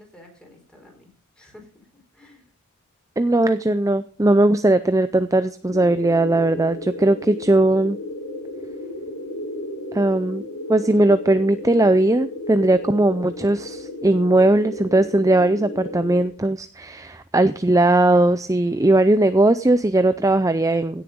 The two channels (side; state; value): both; normal; correlation 0.80